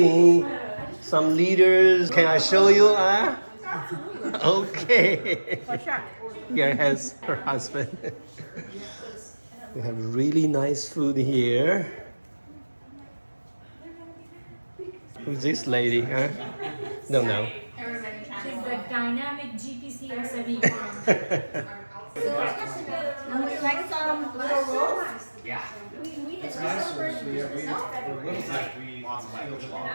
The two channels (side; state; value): both; inverted; correlation -1.00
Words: some leaders. Can I show you? Okay. For sure. Here has her husband. We have really nice food here. Who's this lady? Huh? Don't know. She's the dynamic GPC SME. Would you like some little rolls? Yeah. It's nicer.